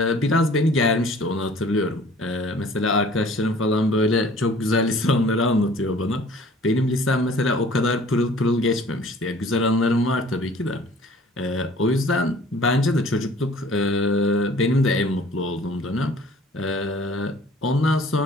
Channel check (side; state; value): both; normal; correlation 0.50